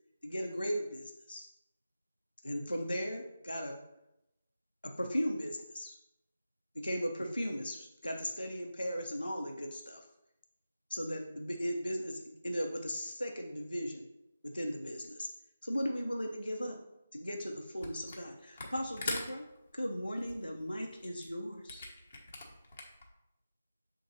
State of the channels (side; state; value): both; inverted; correlation -0.93